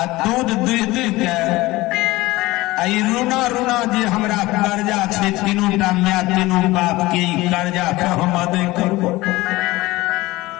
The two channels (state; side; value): quieter; right; 19.5 dB